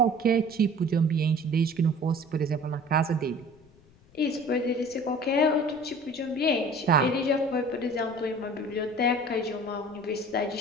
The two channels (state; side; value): noise; left; rumble, 28 dB below the sound